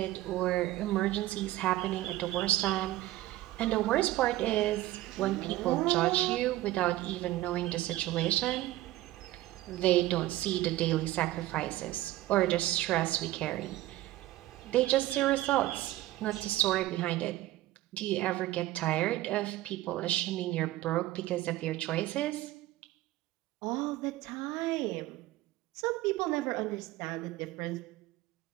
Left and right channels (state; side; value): quieter; left; 16.0 dB